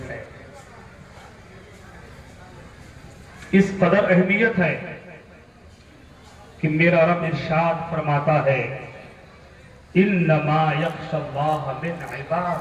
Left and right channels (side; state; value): both; identical; correlation 1.00